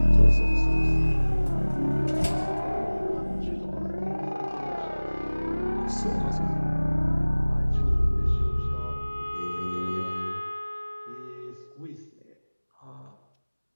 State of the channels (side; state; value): both; inverted; correlation -1.00